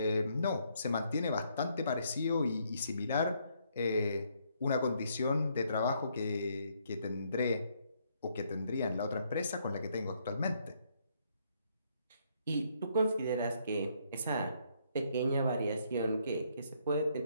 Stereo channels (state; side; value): inverted; both; correlation -0.71